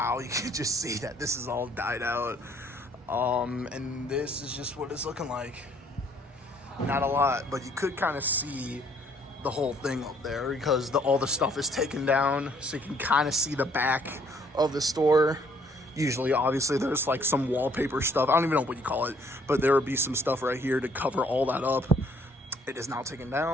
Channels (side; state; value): both; normal; correlation 0.63